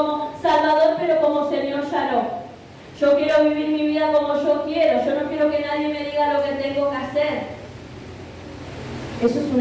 Salvador, pero como Señor ya no. Yo quiero vivir mi vida como yo quiero. Yo no quiero que nadie me diga lo que tengo que hacer. Eso es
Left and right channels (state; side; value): identical; both; correlation 1.00